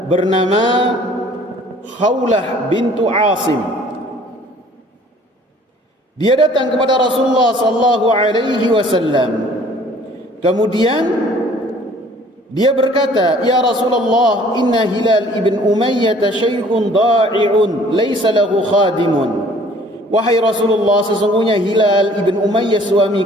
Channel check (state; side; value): normal; both; correlation 0.54